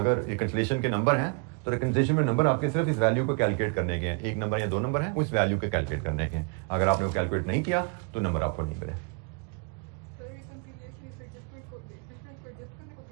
रिकंसिलिएशन के नंबर हैं तो रिकंसिलिएशन में नंबर आपके सिर्फ इस वैल्यू को कैलकुलेट करने के हैं। एक नंबर या दो नंबर हैं, उस वैल्यू के कैलकुलेट करने के हैं। अगर आपने वो कैलकुलेट नहीं किया तो नंबर आपको नहीं मिले।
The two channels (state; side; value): quieter; left; 33.5 dB